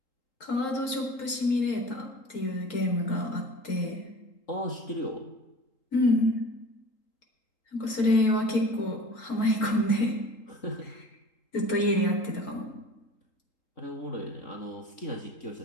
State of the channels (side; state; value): right; late; 3.8 ms